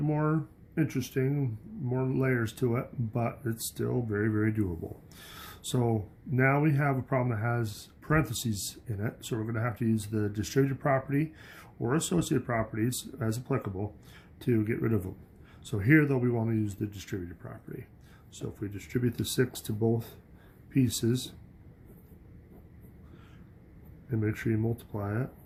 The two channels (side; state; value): both; identical; correlation 1.00